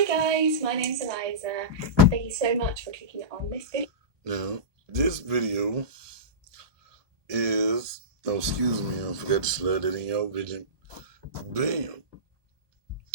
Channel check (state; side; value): late; left; 1.2 ms